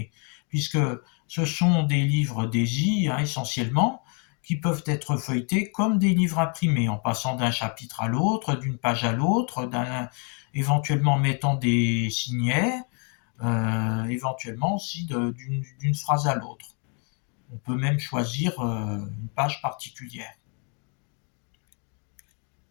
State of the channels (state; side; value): quieter; right; 38.0 dB